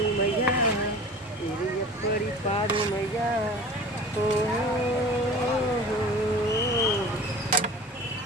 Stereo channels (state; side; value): normal; both; correlation 0.40